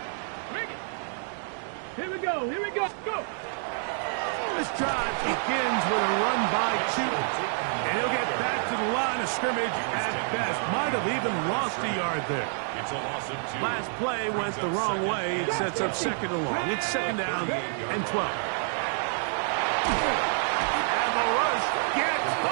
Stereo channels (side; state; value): left; silent; 59 dB below the other